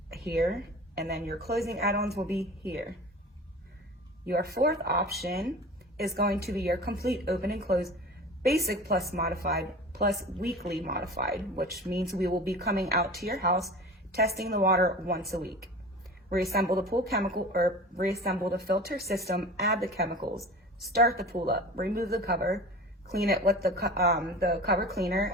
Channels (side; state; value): both; normal; correlation 0.37